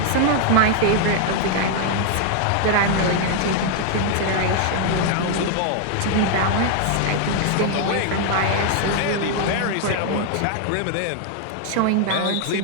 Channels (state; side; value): different; both; correlation 0.00